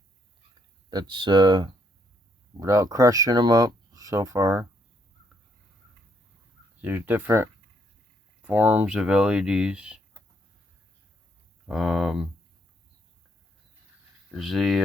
That's without crushing them up so far. There's different forms of LEDs. There's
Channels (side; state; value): both; normal; correlation 0.72